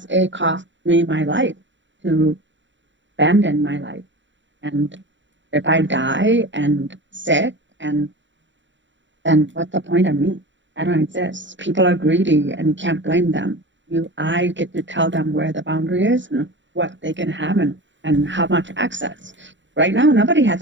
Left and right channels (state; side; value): late; left; 0.54 ms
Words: it cost me my life to abandon my life. And if I die and sick, and then what's the point of me? I don't exist. People are greedy, and you can't blame them. I get to tell them where the boundary is and what they can have, and how much access. Right now, nobody has